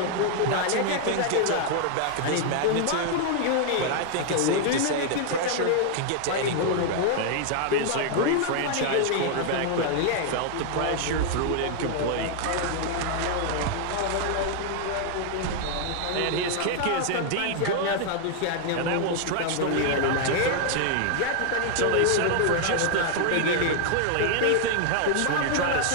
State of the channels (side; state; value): both; different; correlation 0.00